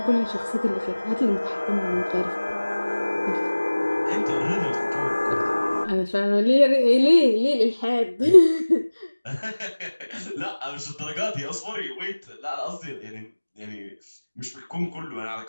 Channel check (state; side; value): inverted; both; correlation -1.00